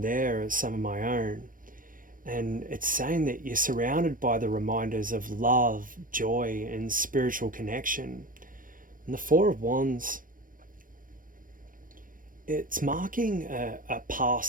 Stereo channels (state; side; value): late; left; 0.40 ms